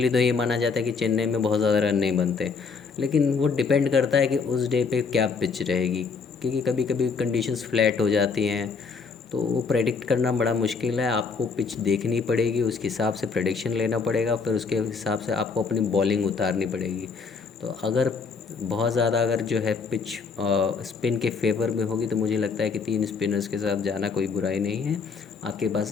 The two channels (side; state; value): right; quieter; 5.1 dB